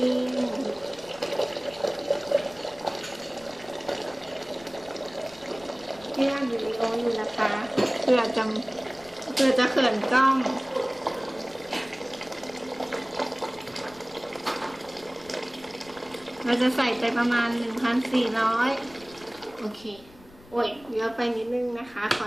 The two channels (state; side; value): noise; left; rumble, 24 dB below the sound